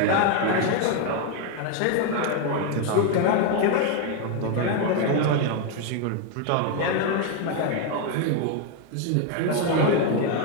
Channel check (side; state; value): both; different; correlation 0.01